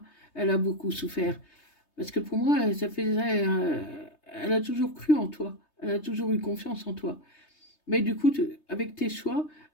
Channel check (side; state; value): right; late; 3.3 ms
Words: Elle a beaucoup souffert. Parce que pour moi, ça faisait, elle a toujours cru en toi. Elle a toujours eu confiance en toi. Mais du coup, avec tes choix,